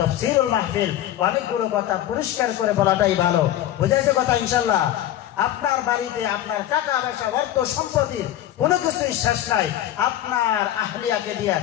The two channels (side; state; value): right; quieter; 12.6 dB